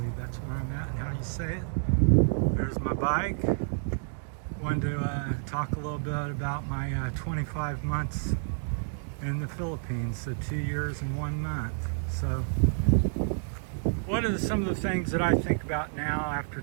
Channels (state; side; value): silent; left; digital silence